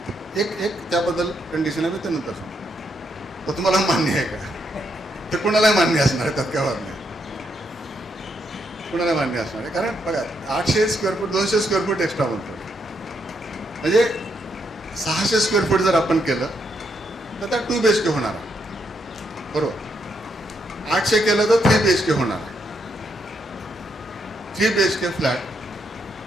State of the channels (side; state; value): both; normal; correlation 0.78